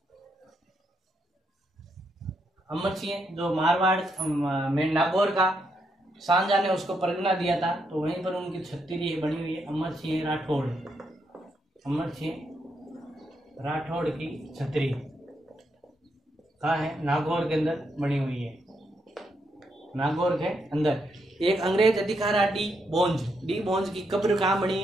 अमर सिंह जो मारवाड़ में नागौर का सांजा ने उसको परगना दिया था, तो वहीं पर उनकी छतरी बनी हुई है। अमर सिंह राठौड़, अमर सिंह राठौड़ की छतरी कहाँ है? नागौर के अंदर बनी हुई है। नागौर के अंदर एक अंग्रेज अधिकारा डी बोंज की कब्र कहाँ बनी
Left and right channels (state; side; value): normal; both; correlation 0.79